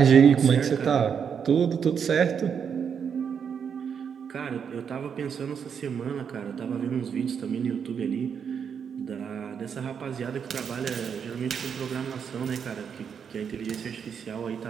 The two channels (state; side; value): quieter; left; 7.2 dB